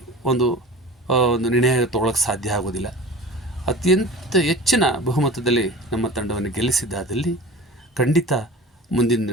ಒಂದು ನಿರ್ಣಯ ತೊಗೊಳಕ್ಕೆ ಸಾಧ್ಯ ಆಗೋದಿಲ್ಲ. ಅತ್ಯಂತ ಹೆಚ್ಚಿನ ಬಹುಮತದಲ್ಲಿ ನಮ್ಮ ತಂಡವನ್ನು ಗೆಲ್ಲಿಸಿದ್ದಾದಲ್ಲಿ ಖಂಡಿತ ಮುಂದಿನ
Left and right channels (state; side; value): normal; both; correlation 0.37